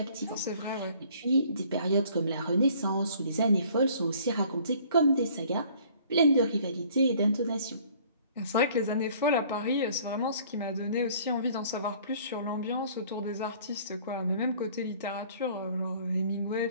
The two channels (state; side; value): inverted; both; correlation -0.55